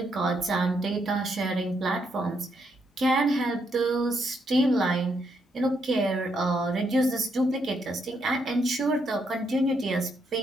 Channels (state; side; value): normal; both; correlation 0.77